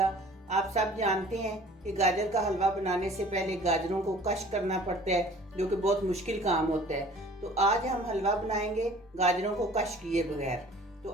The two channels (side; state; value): both; normal; correlation 0.49